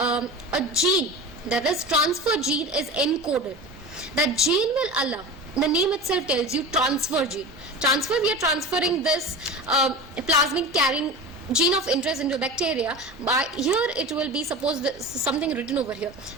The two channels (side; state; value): both; normal; correlation 0.30